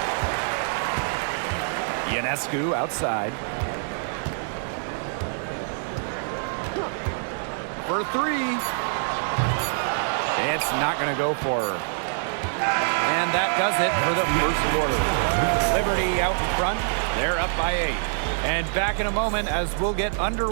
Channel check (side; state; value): left; silent; digital silence